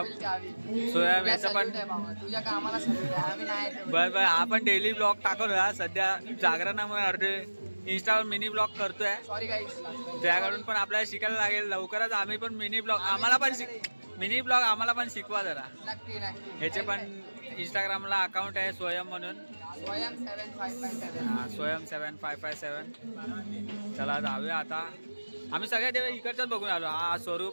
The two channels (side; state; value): both; inverted; correlation -1.00